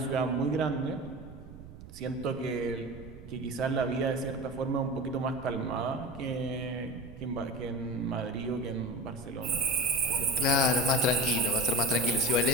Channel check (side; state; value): right; noise; rumble, 16 dB below the sound